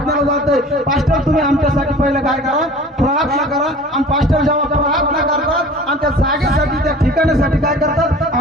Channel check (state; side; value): normal; both; correlation 0.43